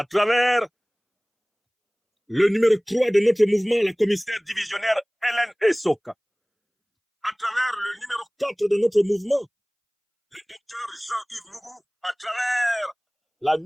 travers le numéro 3 de notre mouvement, la commissaire divisionnaire Hélène Essoka, à travers le numéro 4 de notre mouvement, le docteur Jean-Yves Mougou, à travers la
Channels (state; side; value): identical; both; correlation 1.00